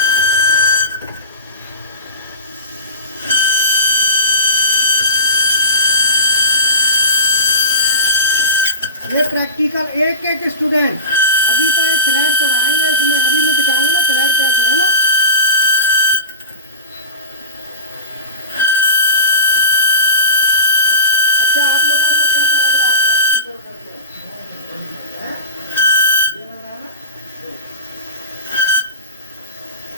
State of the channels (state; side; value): inverted; both; correlation -0.31